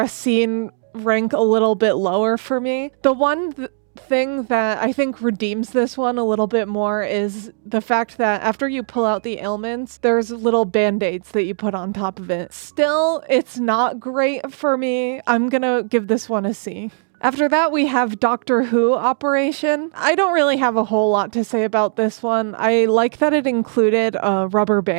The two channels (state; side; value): silent; left; 67 dB below the other